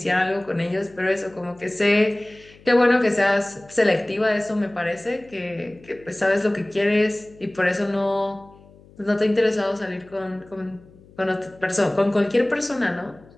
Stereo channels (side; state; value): left; noise; hum, 25 dB below the sound